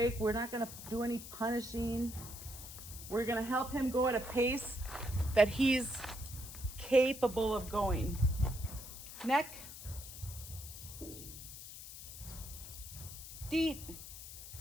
We're not going to do any punishing. We're going to help him go at a pace that he's capable of going. Neck. Deep.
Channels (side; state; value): left; noise; hiss, 12 dB below the sound